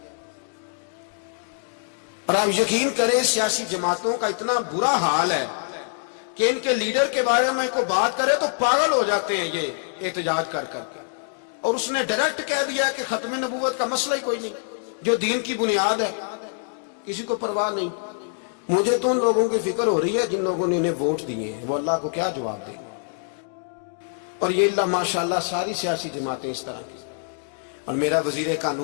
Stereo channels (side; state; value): right; silent; digital silence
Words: और आप यकीन करें सियासी जमातों का इतना बुरा हाल है कि इनके लीडर के बारे में कोई बात करे तो पागल हो जाते हैं ये एहतजाज कर करके। और उसने डायरेक्ट कह दिया कि खत्म नबूवत का मसला ही कोई नहीं, जो दीन की बुनियाद है, किसी को परवाह नहीं। मुझे तो उन लोगों की फिक्र हो रही है जिन लोगों ने इन्हें वोट दिए हैं, वो अल्लाह को क्या जवाब देंगे। और ये अल्लाह माशाल्लाह सारी सियासी जमातें इस तरह की। और मेरा वजीर